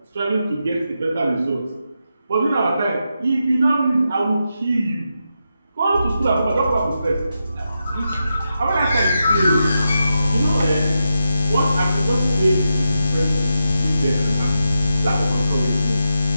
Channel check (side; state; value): both; inverted; correlation -0.86